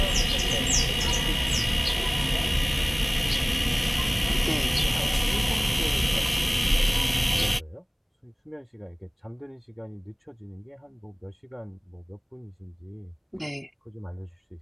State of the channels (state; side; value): identical; both; correlation 1.00